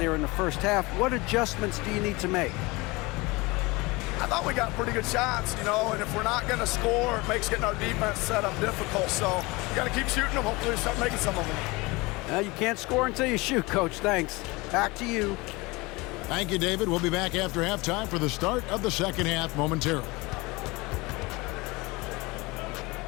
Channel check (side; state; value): right; quieter; 23.7 dB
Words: in the first half. What adjustments do you need to make? I thought we got pretty good shots, you know, and if we're not going to score, it makes getting our defense set up difficult. So you got to keep shooting them. Hopefully we start making some of them. You can't score until you shoot, Coach. Thanks. Back to you. Thank you, David. We'll be back after halftime for the start of the second half momentarily.